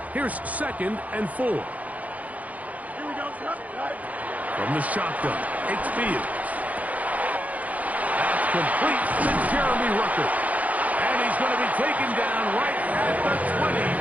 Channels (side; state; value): left; late; 0.073 ms